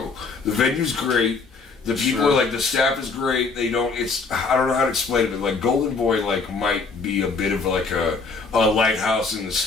The venue's great. The people are the staff is great. They don't. I don't know how to explain it, but Golden Boy might be a bit of a lighthouse in the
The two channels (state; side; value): quieter; right; 4.4 dB